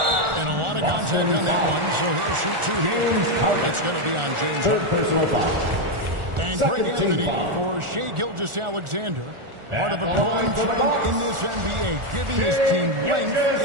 And a lot of contact on that one, so he'll shoot 2 here. It's going to be on James Harden. Personal foul. And Greg Anthony for Shai Gilgeous-Alexander. Part of a growing trend in this NBA, giving his team length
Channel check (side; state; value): left; late; 1.4 ms